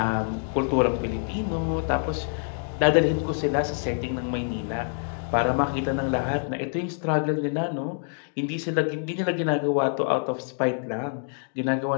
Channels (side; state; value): right; silent; 61 dB below the other